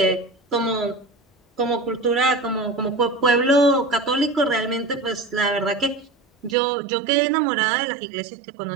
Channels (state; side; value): drops out; left; at 6.6 s